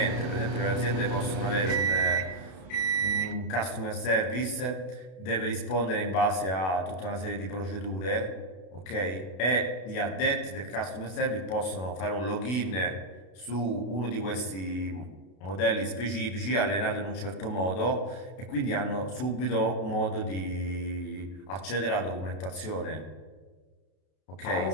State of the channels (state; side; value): late; right; 32 ms